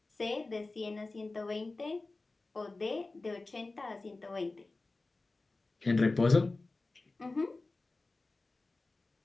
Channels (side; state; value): right; quieter; 3.3 dB